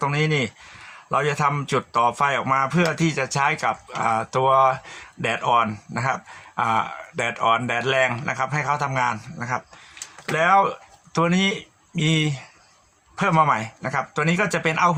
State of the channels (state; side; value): identical; both; correlation 1.00